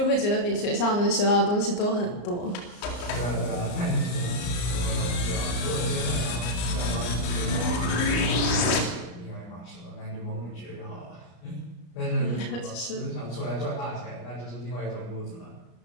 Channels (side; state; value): right; late; 34 ms